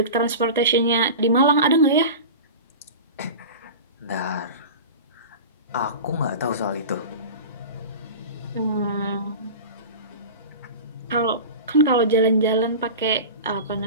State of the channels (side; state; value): both; inverted; correlation -0.31